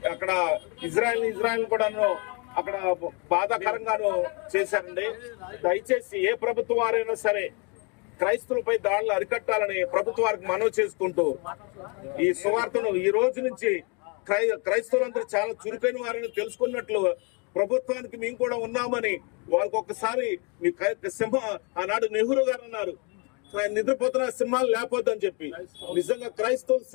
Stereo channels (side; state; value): right; quieter; 33.0 dB